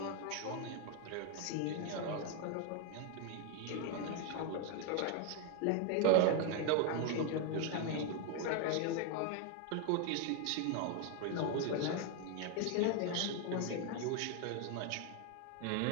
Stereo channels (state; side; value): different; both; correlation 0.01